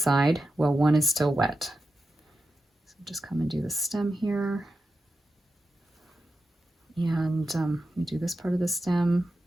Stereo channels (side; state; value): both; normal; correlation 0.90